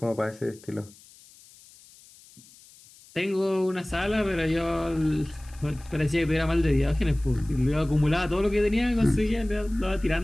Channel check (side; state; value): left; noise; hiss, 24 dB below the sound